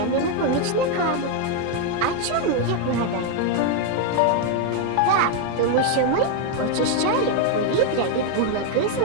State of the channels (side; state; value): both; different; correlation 0.01